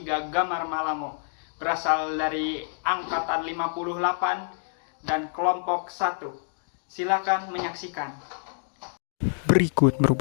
Gamar Malamo. Berasal dari angkatan 58 dan kelompok 1. Silakan menyaksikan. Berikut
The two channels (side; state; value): right; silent; digital silence